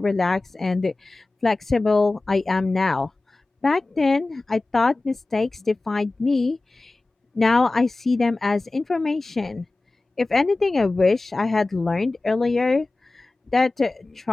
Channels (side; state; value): right; quieter; 3.1 dB